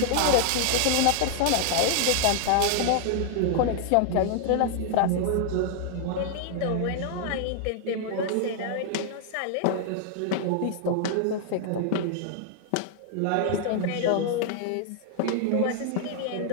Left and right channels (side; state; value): both; different; correlation 0.00